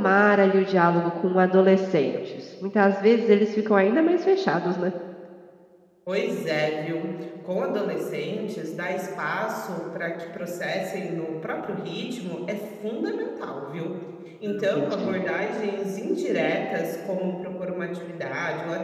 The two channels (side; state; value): both; identical; correlation 1.00